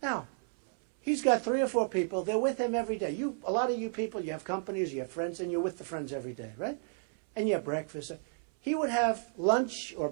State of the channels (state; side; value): silent; left; 56 dB below the other